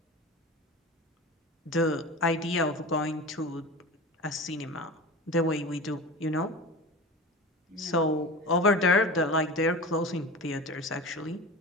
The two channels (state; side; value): normal; both; correlation 0.32